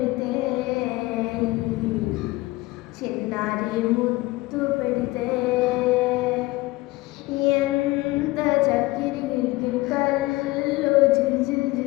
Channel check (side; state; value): right; quieter; 20.2 dB